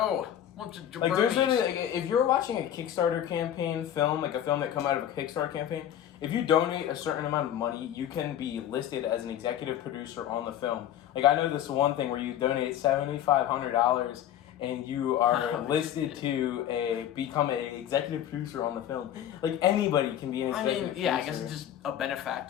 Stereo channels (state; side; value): quieter; right; 10.9 dB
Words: Bunch of There's really, if you're watching a Kickstarter campaign film, a film that come out of a Kickstarter campaign, if you donate a certain amount of money, you can be listed as an executive producer on the film. I know this one thing where you donate $7,500 and you are listed to become an executive producer on the film. Anybody can be an executive producer. I guess it's just a